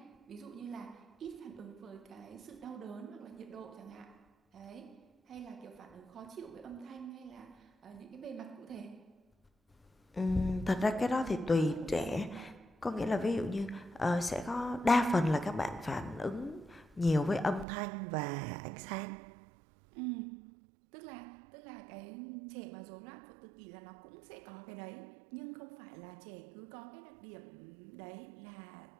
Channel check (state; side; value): drops out; left; at 17.7 s